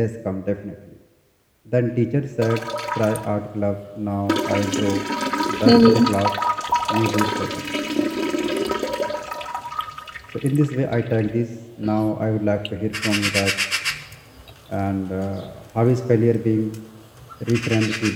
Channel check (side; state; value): both; identical; correlation 1.00